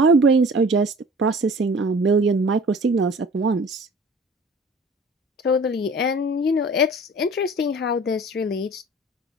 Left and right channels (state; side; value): normal; both; correlation 0.45